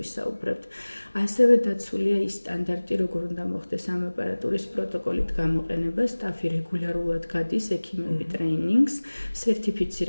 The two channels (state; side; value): inverted; both; correlation -1.00